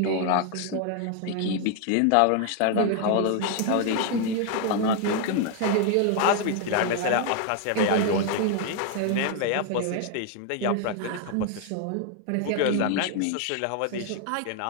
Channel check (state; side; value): different; both; correlation 0.00